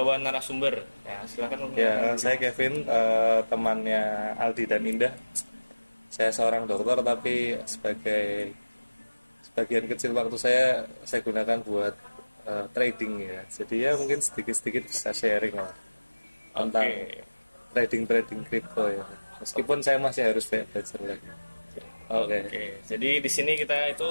narasumber. Ya, silakan. Ya, saya Kevin, temannya Aldi dan Indah. Saya seorang dokter tapi sebagian kecil waktu saya gunakan buat trading ya. Jadi ya mungkin sedikit-sedikit bisa sharing lah tentang trading kripto ya. Meskipun saya masih harus belajar lagi. Oke. Jadi di sini kita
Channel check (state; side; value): inverted; both; correlation -1.00